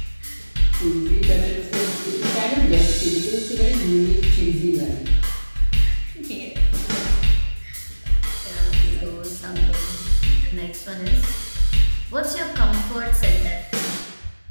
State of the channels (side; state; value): both; inverted; correlation -1.00